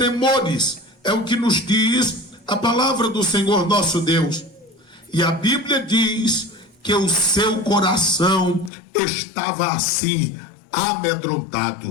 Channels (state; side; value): drops out; right; at 8.7 s